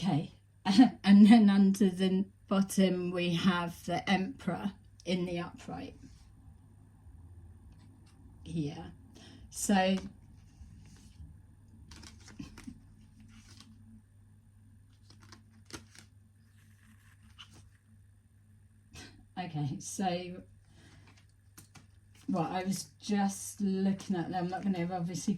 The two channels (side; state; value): both; identical; correlation 1.00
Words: and then under the bottom we have the Emperor in the upright here. So okay, so well, I was just looking at them. I'm not going to obviously